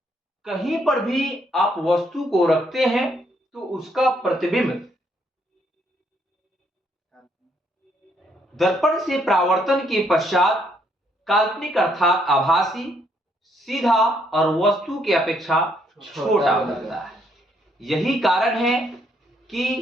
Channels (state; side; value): normal; both; correlation 0.71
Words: कहीं पर भी आप वस्तु को रखते हैं तो उसका प्रतिबिंब दर्पण से परावर्तन के पश्चात काल्पनिक अर्थात आभासी, सीधा और वस्तु की अपेक्षा छोटा बनता है। यही कारण है